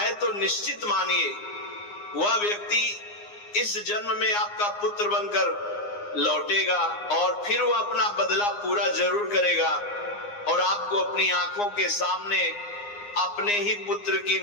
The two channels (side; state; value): right; late; 9.7 ms